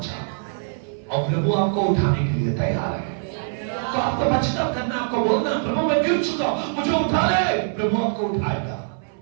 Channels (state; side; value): silent; left; 58 dB below the other